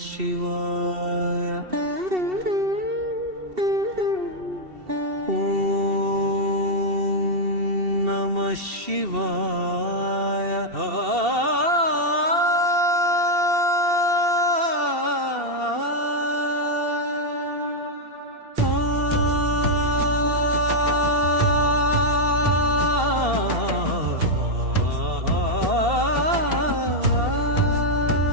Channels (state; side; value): late; left; 2.7 ms